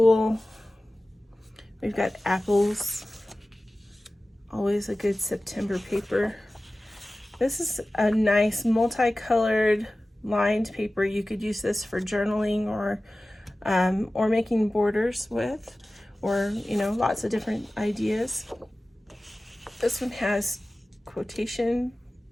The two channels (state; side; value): normal; both; correlation 0.96